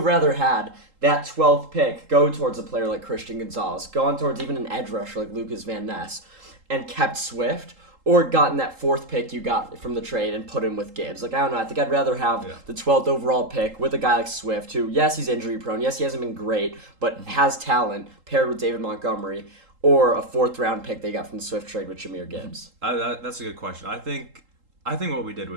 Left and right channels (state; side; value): late; left; 3.8 ms